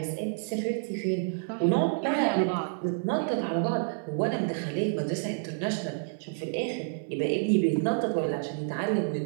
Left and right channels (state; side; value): silent; left; 57 dB below the other